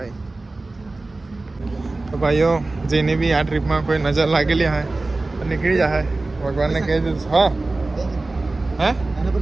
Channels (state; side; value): quieter; left; 3.2 dB